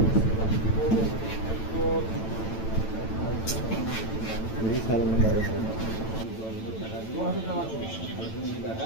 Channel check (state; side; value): late; right; 9.0 ms